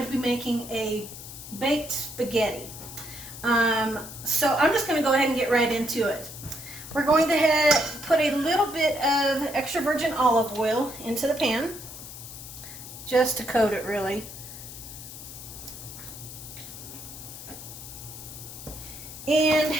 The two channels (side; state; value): left; noise; hiss, 12 dB below the sound